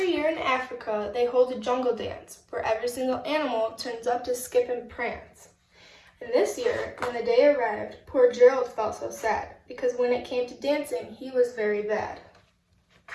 year in Africa, they hold a jungle dance where every single animal turns up to skip and prance. And this year, when the day arrived, poor Gerald felt so sad because when it came to dancing, he was very bad.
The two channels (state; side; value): identical; both; correlation 1.00